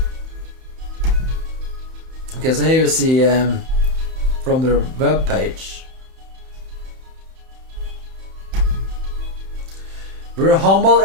Okay, so here you see from their web page. We're humbled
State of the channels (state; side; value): late; left; 31 ms